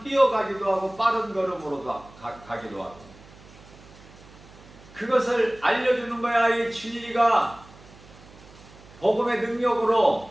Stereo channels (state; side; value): noise; right; hum, 22 dB below the sound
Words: 뛰어가기도 하고 빠른 걸음으로 가기도 하고. 그것을 알려주는 거야. 이 진리가 복음의 능력으로,